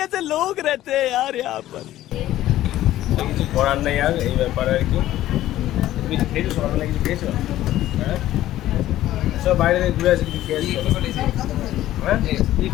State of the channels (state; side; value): quieter; right; 14.1 dB